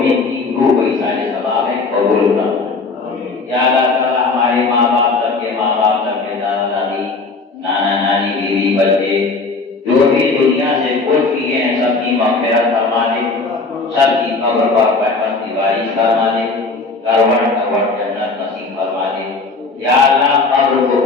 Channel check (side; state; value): right; quieter; 3.9 dB